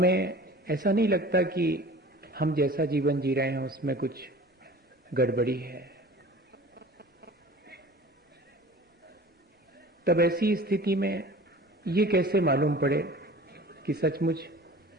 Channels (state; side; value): normal; both; correlation 0.42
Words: ऐसा नहीं लगता कि हम जैसा जीवन जी रहे हैं उसमें कुछ गड़बड़ी है। तब ऐसी स्थिति में ये कैसे मालूम पड़े कि सचमुच